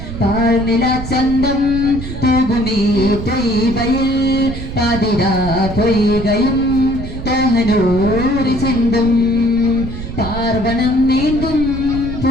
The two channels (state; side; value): noise; right; rumble, 8 dB below the sound